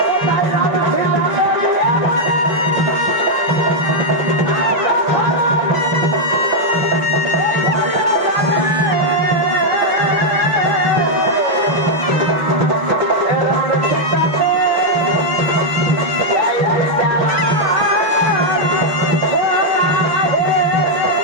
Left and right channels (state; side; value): late; left; 6.2 ms